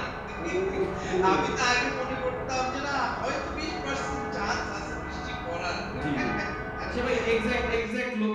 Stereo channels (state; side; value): identical; both; correlation 1.00